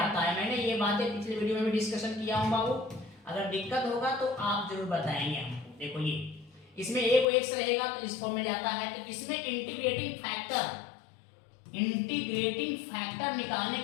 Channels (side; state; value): right; drops out; at 7.2 s